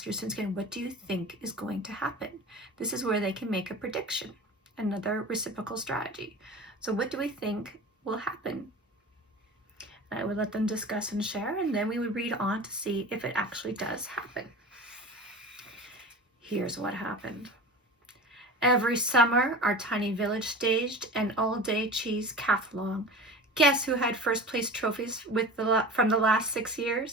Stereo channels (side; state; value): both; normal; correlation 0.34